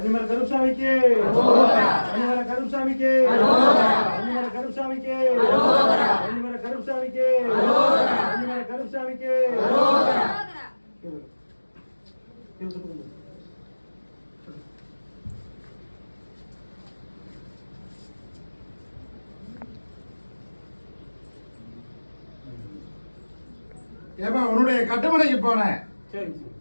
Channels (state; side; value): inverted; both; correlation -1.00